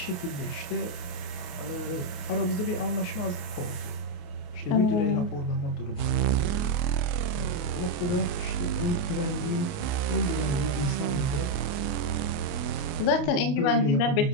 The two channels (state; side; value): late; right; 28 ms